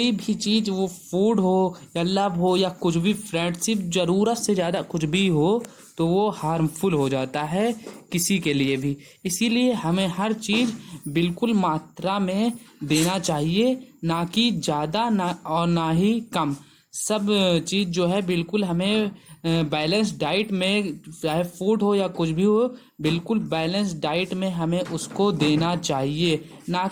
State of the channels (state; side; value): identical; both; correlation 1.00